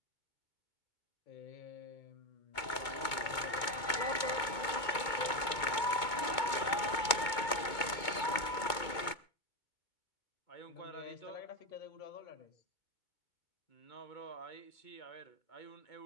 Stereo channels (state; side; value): late; right; 2.2 ms